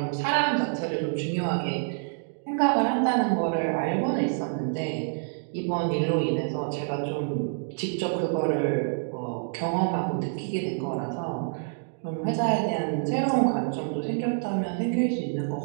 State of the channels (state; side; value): silent; left; digital silence